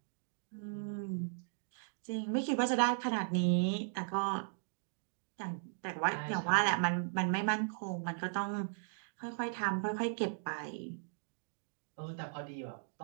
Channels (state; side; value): silent; left; digital silence